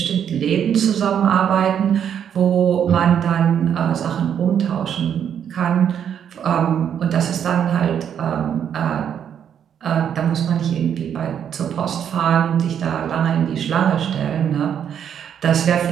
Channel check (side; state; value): left; quieter; 8.7 dB